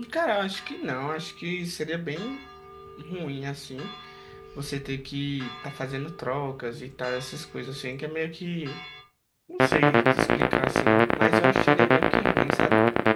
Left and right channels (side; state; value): both; identical; correlation 1.00